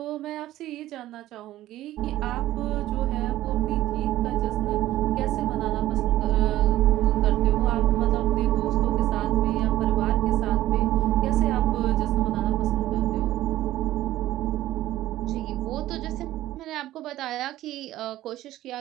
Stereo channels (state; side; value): quieter; left; 14.8 dB